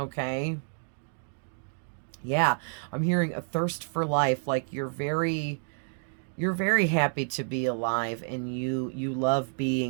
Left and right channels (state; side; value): silent; left; 58 dB below the other